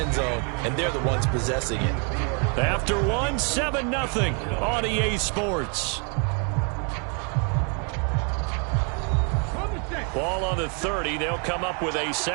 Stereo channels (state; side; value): quieter; left; 38.0 dB